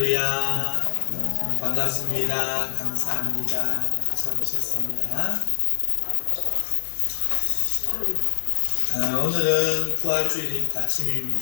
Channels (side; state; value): right; silent; digital silence